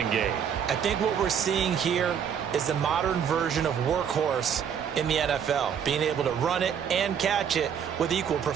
game. I think what we're seeing here is the modern version of workhorse in the NFL, being able to run it and catch it with equal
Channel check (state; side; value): quieter; left; 8.0 dB